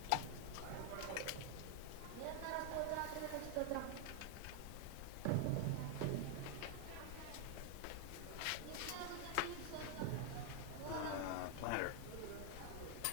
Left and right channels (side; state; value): both; different; correlation 0.00